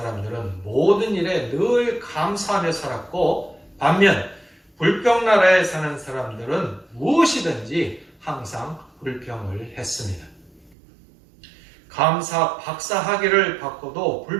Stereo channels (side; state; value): left; drops out; at 10.8 s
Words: 모든 일에 늘 감사하며 살았고, 반면 불평 나라에 사는 사람들은 무엇이든지 항상 불평을 했습니다. 감사 박사 학위를 받고도